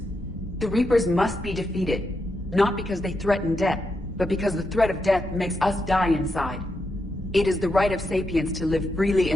The Reapers must be defeated, not because they threaten death, but because the threat of death makes us die inside. It is the right of sapiens to live freely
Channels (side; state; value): both; normal; correlation 0.84